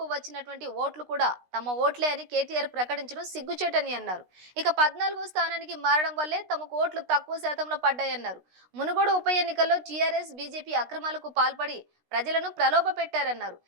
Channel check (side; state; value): left; late; 16 ms